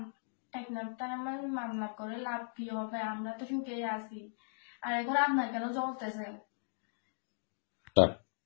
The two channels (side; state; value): right; silent; digital silence